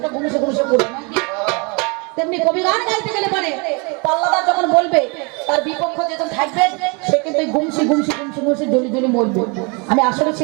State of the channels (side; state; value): left; quieter; 31.2 dB